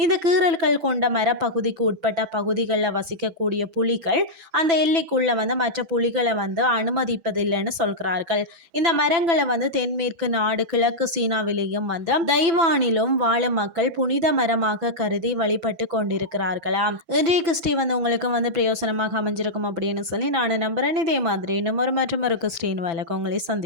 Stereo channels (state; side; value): late; left; 6.0 ms